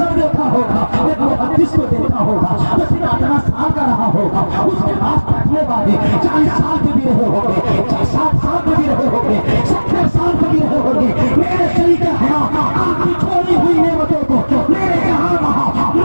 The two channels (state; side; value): inverted; both; correlation -1.00